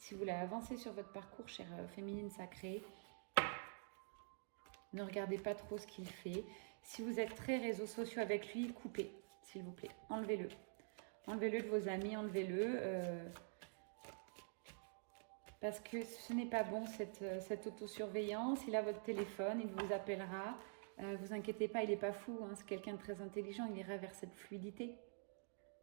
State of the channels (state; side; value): silent; left; digital silence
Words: vous voulez avancer sur votre parcours, chère féminine sacrée, ne regardez pas trop ce qu'il fait. Si vous êtes très réseaux sociaux avec lui, coupez, s'il vous plaît. Enlevez-le. Enlevez-le de vos amis, enlevez-le. Parce que ce n'est pas bon, cette autosurveillance. Il a votre téléphone, il vous appellera. Vous inquiétez pas, il n'est pas fou. Hein, c'est quelqu'un de très intelligent. Il ira vers cette fluidité.